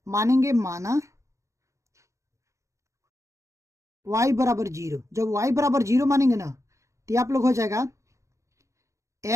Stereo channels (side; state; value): left; late; 0.15 ms